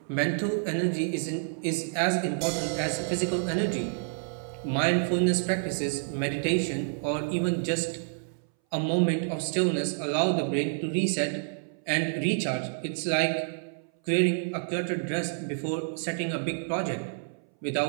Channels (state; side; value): silent; left; 59 dB below the other